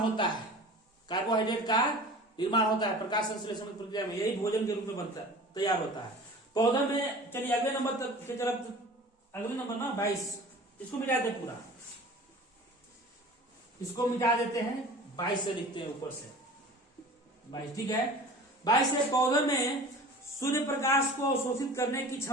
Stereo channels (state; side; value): normal; both; correlation 0.41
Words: है, कार्बोहाइड्रेट का निर्माण होता है प्रकाश संश्लेषण की प्रक्रिया में, यही भोजन के रूप में बनता तैयार होता है पौधा में। चलिए अगले नंबर तक की तरफ, अगले नंबर ना 22, इसको मिटा दे पूरा, इसको मिटा देते हैं, 22 से लिखते हैं ऊपर से 22, ठीक है। 22 से पौधे में सूर्य प्रकाश को अवशोषित करने की